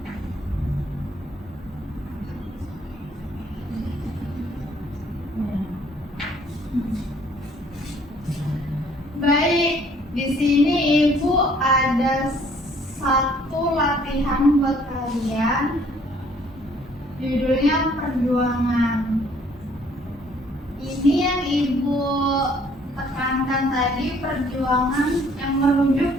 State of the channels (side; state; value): both; normal; correlation 0.60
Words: di sini Ibu ada satu latihan buat kalian. Judulnya perjuangan. Ini yang Ibu tekankan tadi, perjuangan yang menuju